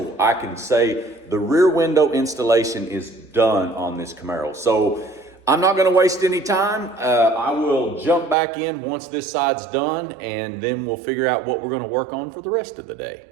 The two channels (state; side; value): drops out; left; at 8.3 s